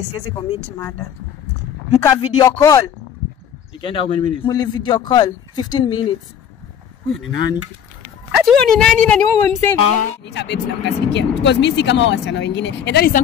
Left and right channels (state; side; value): quieter; right; 8.7 dB